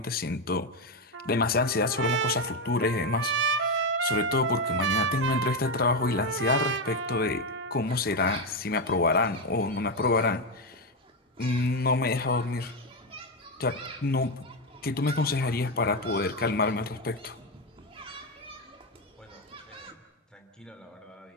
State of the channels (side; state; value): both; normal; correlation 0.08